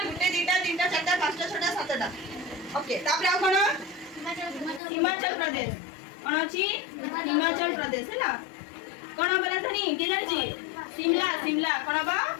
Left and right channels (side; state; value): right; drops out; at 4.8 s